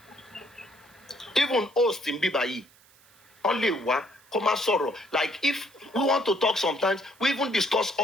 Even host in Bibayi, only one, come sorrow. Like if we want to talk sometimes, we even discuss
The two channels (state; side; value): noise; right; hiss, 28 dB below the sound